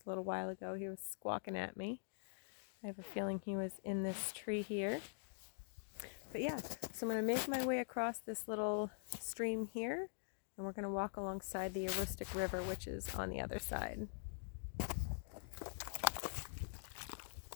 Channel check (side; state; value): right; silent; digital silence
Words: a little while ago. He was squawking at me. I have a feeling he was in this tree here. But yeah, so I'm going to make my way across this little stream here, and we're going to walk alongside the Aroostook River, which is on the other side.